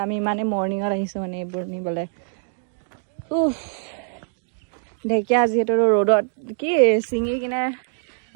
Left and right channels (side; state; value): left; silent; digital silence